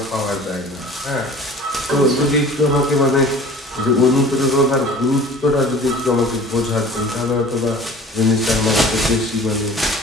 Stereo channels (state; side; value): normal; both; correlation 0.45